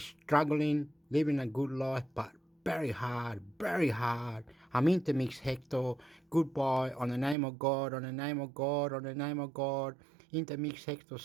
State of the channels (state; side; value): drops out; left; at 7.4 s